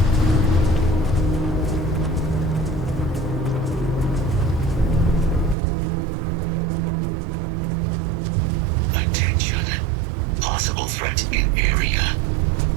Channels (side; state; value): left; drops out; at 5.6 s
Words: Attention. Possible threat in area.